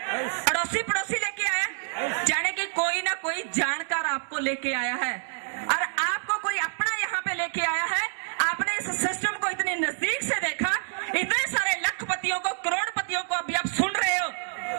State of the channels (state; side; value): silent; left; digital silence